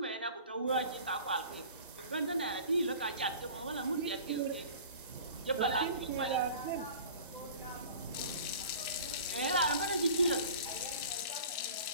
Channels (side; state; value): both; inverted; correlation -0.42